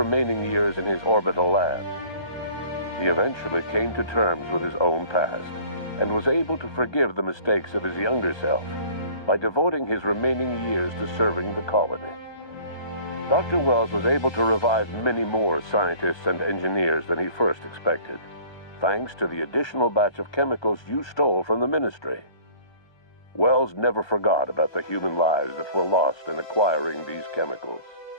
years in his orbital lab. He eventually came to terms with his own past and was able to forgive the mistakes of his younger self by devoting his remaining years to serving the colony. Dr. Wells was able to revive many more scientists and engineers than he first expected, thanks to the additional batch of chemicals you stole from the Ministry. Wells never forgot about the human lives that were lost in acquiring these chemicals.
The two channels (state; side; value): late; right; 1.2 ms